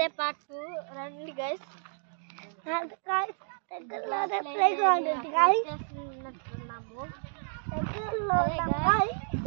part 2. రండి guys. guys దగ్గరలో ప్లే గ్రౌండ్ ఉంది guys. చేస్తున్నాము దగ్గరలో guys.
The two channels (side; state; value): left; silent; digital silence